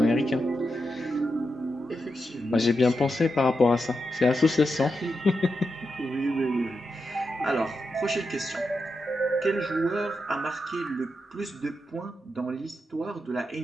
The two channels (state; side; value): normal; both; correlation 0.87